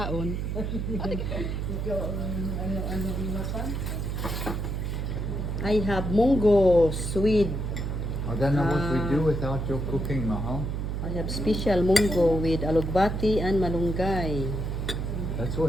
I have munggo, sweet. I don't know what we do without your cooking, Mahal. I have special munggo with alugbati and malunggay. That's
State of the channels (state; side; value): noise; right; hum, 2 dB below the sound